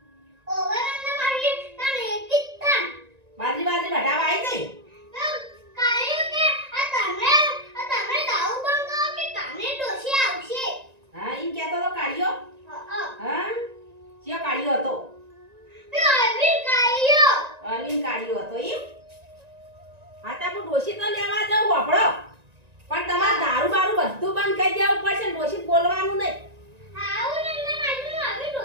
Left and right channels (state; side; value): late; left; 1.9 ms